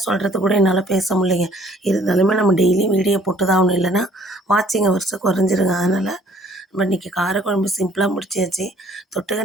சொல்கிறது கூட என்னால் பேச முடியலைங்க. இருந்தாலுமே நம்ம டெய்லியும் வீடியோ போட்டு தான் ஆகணும். இல்லைன்னா வாட்சிங் ஹவர்ஸு குறைஞ்சிருங்க. அதனால் நம்ம இன்றைக்கி காரக்குழம்பு சிம்பிளாக முடிச்சாச்சு.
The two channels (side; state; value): both; normal; correlation 0.58